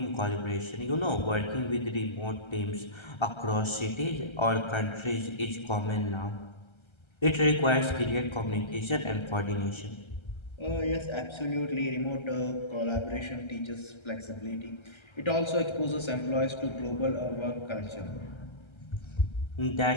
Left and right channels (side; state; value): right; late; 1.3 ms